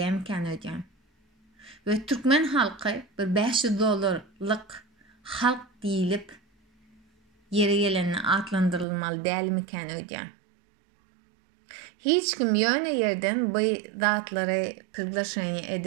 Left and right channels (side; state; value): left; drops out; at 8.8 s